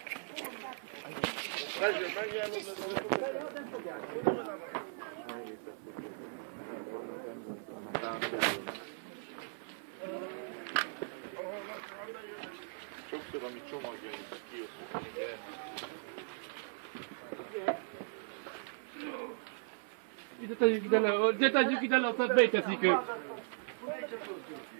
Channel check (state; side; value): silent; left; 53 dB below the other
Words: Sokszor, amit csomagjaink, kiosztjuk a gyermek. Ide tegyük ide le, aztán beteszik ők.